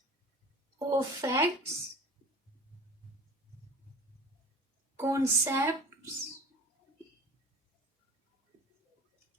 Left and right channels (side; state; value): both; normal; correlation 0.39